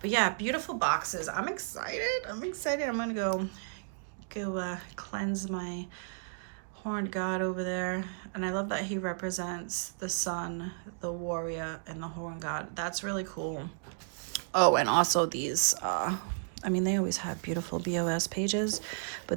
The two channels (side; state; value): left; silent; digital silence